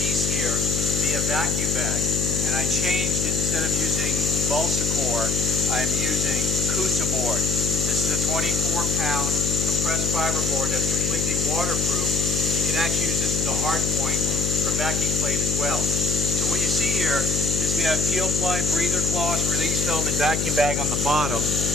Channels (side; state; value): left; noise; hum, 1 dB below the sound